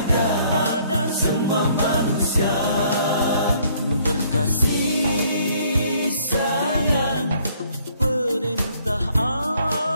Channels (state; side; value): inverted; both; correlation -0.63